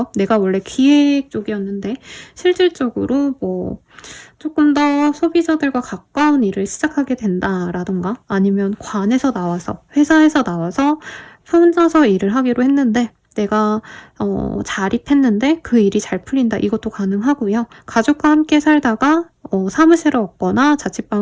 내가 원래 기획 쪽이었는데 실질적으로 뭐 조금 더 소비자들과 가까운 일을 시작하게 된다라던가, 아니면 관에서 나와서, 회사에서 나와서 혼자서 일을 하기로 했는데 내가 자립했는데 그 일이 잘 풀린다, 이것도 가능하고요. 가족과 함께 살다가 사무실을 얻거나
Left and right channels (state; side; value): identical; both; correlation 1.00